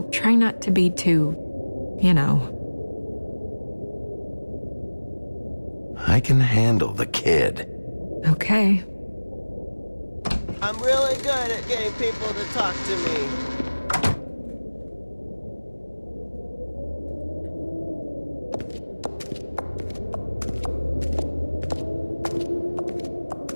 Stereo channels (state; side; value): inverted; both; correlation -1.00